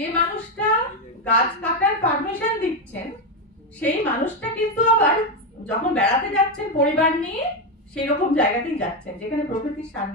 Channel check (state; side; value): normal; both; correlation 0.08